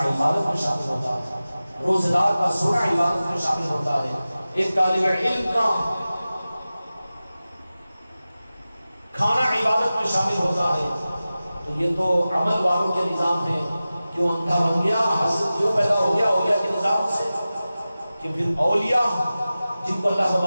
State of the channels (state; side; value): inverted; both; correlation -0.96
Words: عبادت میں شامل ہوتا ہے، روزہ دار کا سونا عبادت میں شامل ہوتا ہے، ایک طالب علم کا کھانا عبادت میں شامل ہوتا ہے۔ تو یہ تو عمل والوں کے نظام ہے، کیوں اندھا بن گیا، حسد کیوں پیدا ہو گیا اولیاء کے نظام سے، کہ پھر اولیاء جن کو اللہ